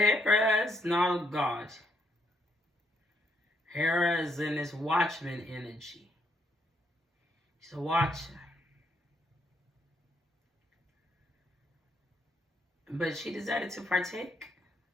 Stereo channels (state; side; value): normal; both; correlation 0.74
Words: is not a god. Hera is in this watchman energy. She's a watcher. But she decided to partake.